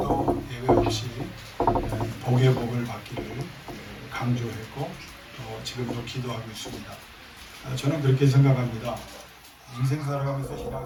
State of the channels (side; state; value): both; identical; correlation 1.00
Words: 예외 없이 복의 복을 받기를 강조했고 또 지금도 기도하고 있습니다. 저는 그렇게 생각합니다. 인생 살아가면서